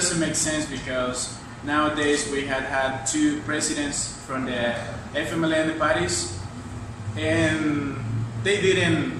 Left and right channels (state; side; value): identical; both; correlation 1.00